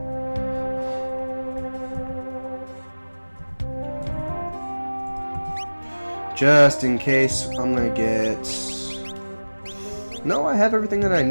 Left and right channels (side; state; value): both; inverted; correlation -1.00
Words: Just in case, I'm gonna get... No, I have everything that I